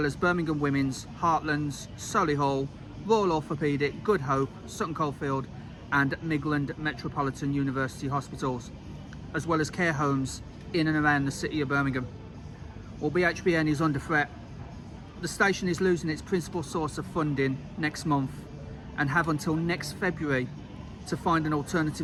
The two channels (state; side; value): identical; both; correlation 1.00